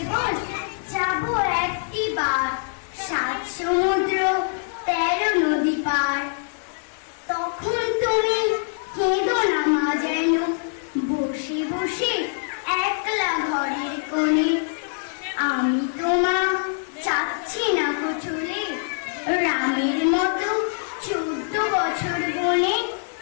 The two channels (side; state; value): right; silent; digital silence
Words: যাব একটি বার 7 সমুদ্র 13 নদী পার। তখন তুমি কেঁদো না মা যেন, বসে বসে একলা ঘরের কোণে। আমি তোমা চাচ্ছি না চলে, রামের মতো 14 বছর বনে।